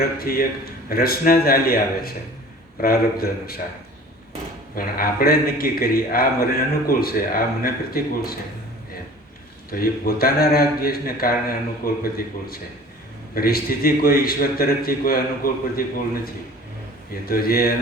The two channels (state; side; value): normal; both; correlation 0.45